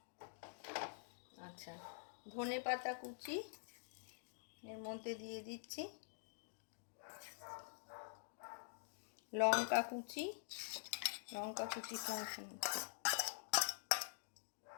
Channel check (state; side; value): silent; right; digital silence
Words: আচ্ছা, ধনে পাতা কুচি এর মধ্যে দিয়ে দিচ্ছি, লঙ্কা কুচি, লঙ্কা কুচি খাওয়াছেন।